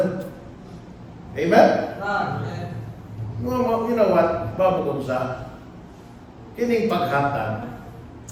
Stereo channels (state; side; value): identical; both; correlation 1.00